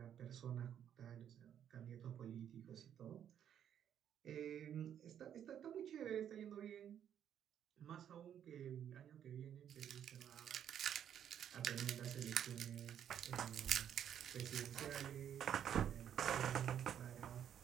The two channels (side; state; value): left; quieter; 9.5 dB